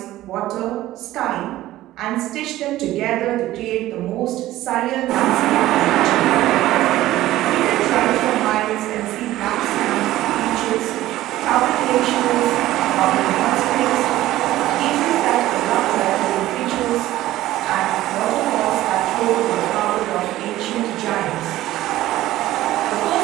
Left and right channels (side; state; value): left; quieter; 15.3 dB